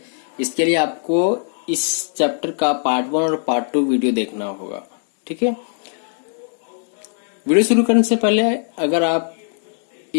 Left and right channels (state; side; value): silent; right; digital silence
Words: इसके लिए आपको इस चैप्टर का पार्ट 1 और पार्ट 2 वीडियो देखना होगा। ठीक है, वीडियो शुरू करने से पहले अगर आप